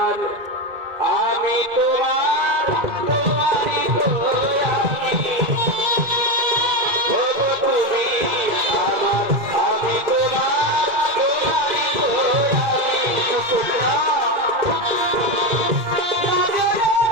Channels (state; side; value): late; left; 2.1 ms